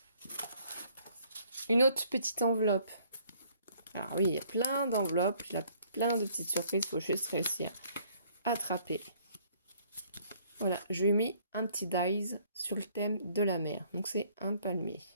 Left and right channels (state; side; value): inverted; both; correlation -0.62